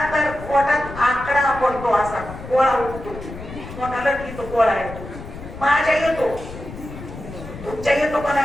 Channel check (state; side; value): noise; left; rumble, 12 dB below the sound